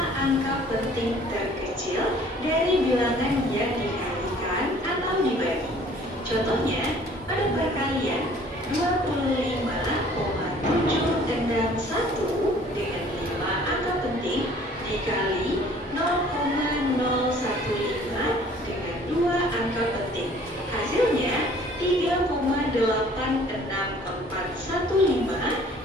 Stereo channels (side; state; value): both; normal; correlation 0.53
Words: angka penting terkecil dari bilangan yang dikalikan atau dibagi. Contohnya, pada perkalian 25,761 dengan 5 angka penting dikali 0,015 dengan 2 angka penting. Hasilnya 3,86415